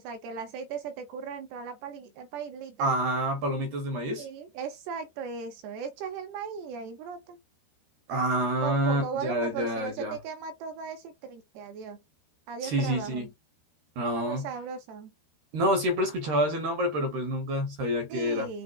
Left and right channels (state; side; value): late; left; 13 ms